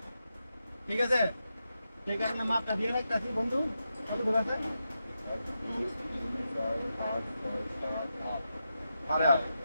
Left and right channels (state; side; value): inverted; both; correlation -0.88